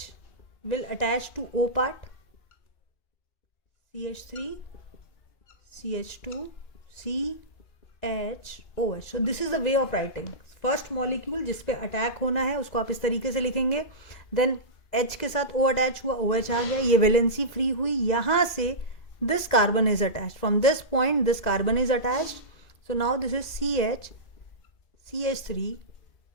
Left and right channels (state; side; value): late; right; 2.0 ms